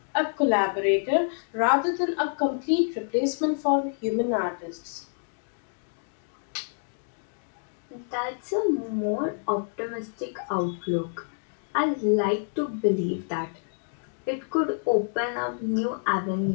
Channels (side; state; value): right; silent; digital silence